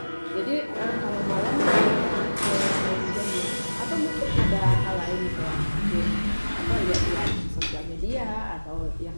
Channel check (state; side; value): inverted; both; correlation -1.00